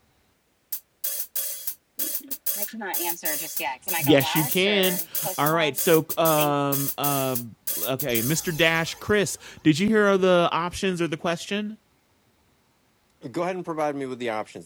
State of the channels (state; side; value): identical; both; correlation 1.00